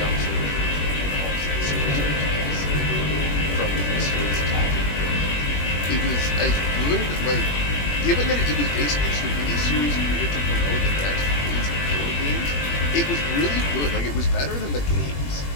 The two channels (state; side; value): late; right; 21 ms